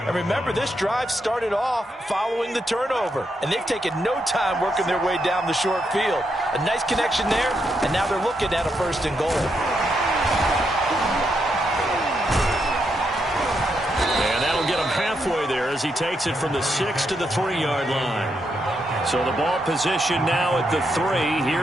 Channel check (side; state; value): both; normal; correlation 0.81